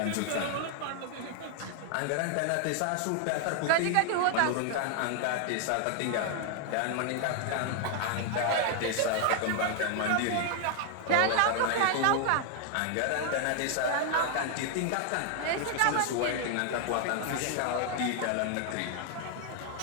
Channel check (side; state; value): both; different; correlation 0.00